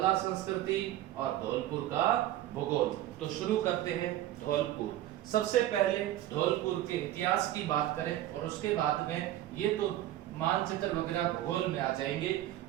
संस्कृति और धौलपुर का भूगोल। तो शुरू करते हैं धौलपुर। सबसे पहले धौलपुर के इतिहास की बात करें और उसके बाद में ये तो मानचित्र वगैरह भूगोल में आ जाएंगे।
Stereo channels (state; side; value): quieter; left; 13.8 dB